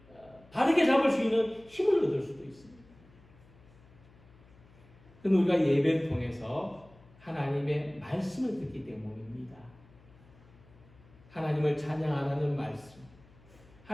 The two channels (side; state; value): left; noise; hum, 26 dB below the sound